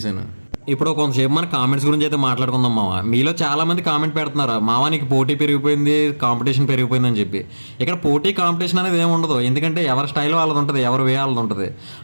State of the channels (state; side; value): inverted; both; correlation -1.00